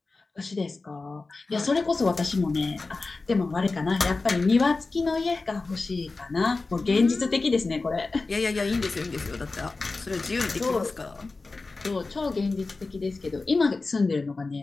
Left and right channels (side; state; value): right; quieter; 3.7 dB